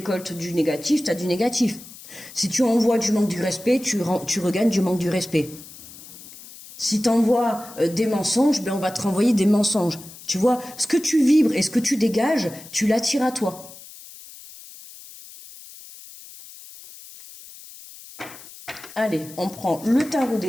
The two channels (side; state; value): left; noise; hiss, 18 dB below the sound